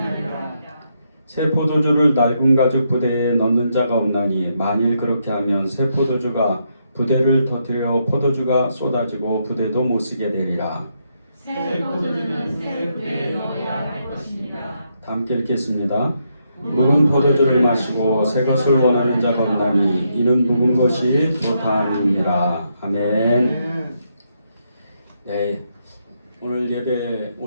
새 포도주를 낡은 가죽 부대에 넣는 자가 없나니 만일 그렇게 하면 새 포도주가 부대를 터뜨려 포도주가 쏟아지고 부대도 못 쓰게 되리라. 새 포도주는 새 부대에 넣어야 할 것입니다. 다 함께 읽겠습니다. 묵은 포도주를 마시고 새 것을 원하는 자가 없나니 이는 묵은 것이 좋다함이니라. 아멘. 네, 오늘 예배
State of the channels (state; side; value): inverted; both; correlation -0.79